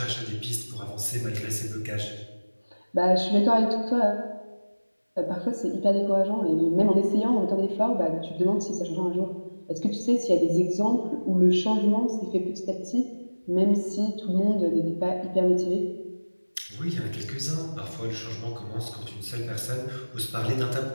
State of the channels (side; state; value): both; inverted; correlation -1.00